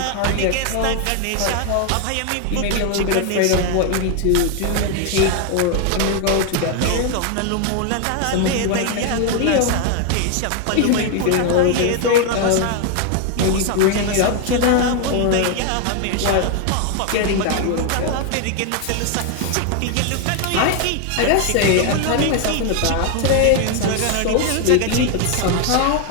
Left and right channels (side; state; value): both; different; correlation 0.01